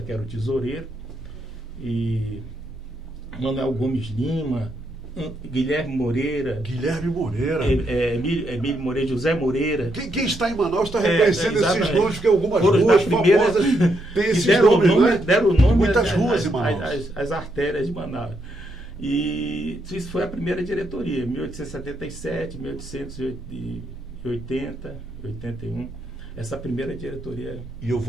que era o tesoureiro, e Manuel Gomes Lima, Guilherme Moreira, Emílio Moreira, José Moreira. Quem está em Manaus está reconhecendo esses nomes, porque algumas ruas famosas têm esses nomes, né? Deram nome muitas ruas em Manaus. As artérias de Manaus. E isso foi a primeira diretoria, 1877, 1880, 81. Essa primeira diretoria. E eu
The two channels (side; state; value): both; normal; correlation 0.78